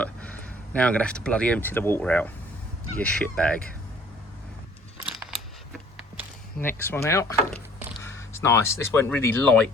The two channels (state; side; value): normal; both; correlation 0.55